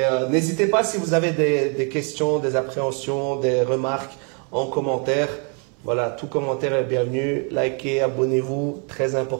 n'hésitez pas si vous avez des questions, des appréhensions, des remarques en commentaire. Voilà, tout commentaire est bienvenu. Likez, abonnez-vous, très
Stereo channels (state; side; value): quieter; left; 38.0 dB